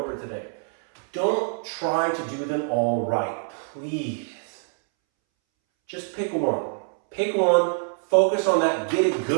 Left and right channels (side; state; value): left; silent; 62 dB below the other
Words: today. Don't try to do them all right. Please. Just pick one. Pick one, focus on that, get it